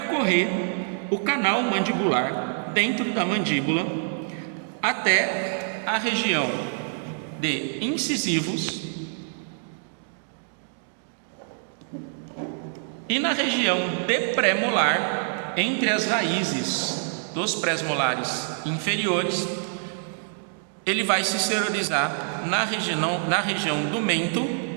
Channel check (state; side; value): silent; left; digital silence